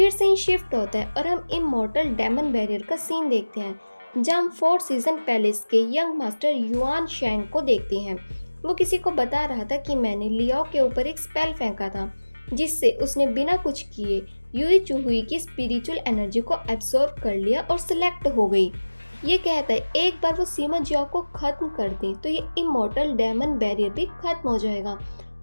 सीन शिफ्ट होता है और हम इमॉर्टल डेमन बैरियर का सीन देखते हैं जहाँ हम 4 सीजन पैलेस के यंग मास्टर युआन शैंग को देखते हैं। वो किसी को बता रहा था कि मैंने लियाओ के ऊपर एक स्पेल फेंका था, जिससे उसने बिना कुछ किए यूई चुहुई की स्पिरिचुअल एनर्जी को एब्सॉर्ब कर लिया और सिलेक्ट हो गई। ये कहता है एक बार वो सीमा जियाओ को खत्म कर दे तो ये इमोर्टल डेमन बैरियर भी खत्म हो जाएगा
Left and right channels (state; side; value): inverted; both; correlation -1.00